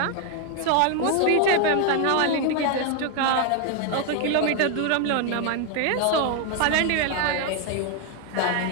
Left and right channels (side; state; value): both; different; correlation 0.00